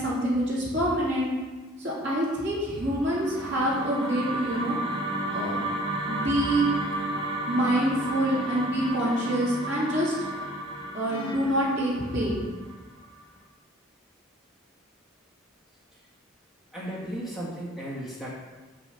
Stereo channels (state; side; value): normal; both; correlation 0.53